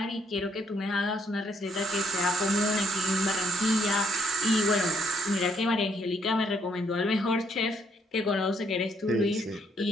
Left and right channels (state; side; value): normal; both; correlation 0.70